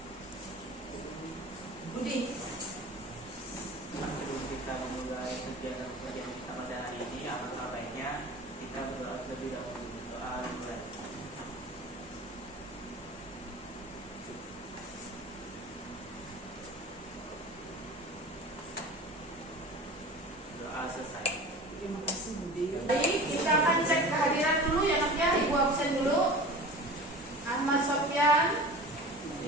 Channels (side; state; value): both; normal; correlation 0.37